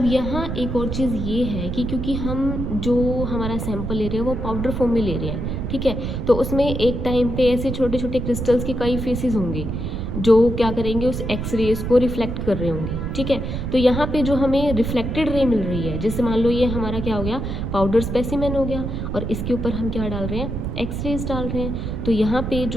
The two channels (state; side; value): noise; right; rumble, 4 dB below the sound